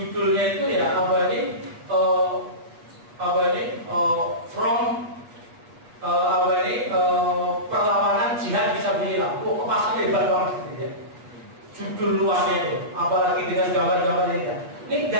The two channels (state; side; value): late; left; 8.1 ms